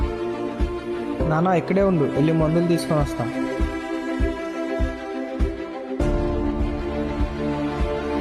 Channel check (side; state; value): both; identical; correlation 1.00